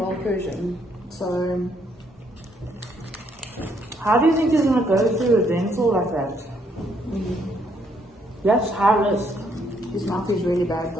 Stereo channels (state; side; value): normal; both; correlation 0.71